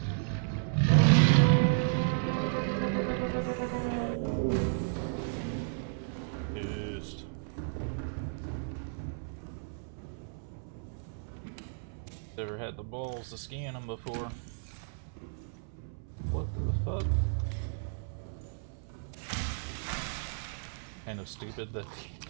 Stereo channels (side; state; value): left; silent; 56 dB below the other